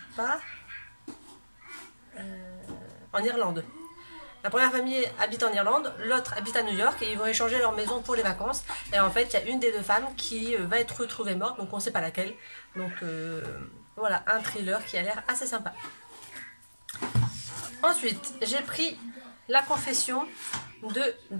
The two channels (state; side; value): inverted; both; correlation -1.00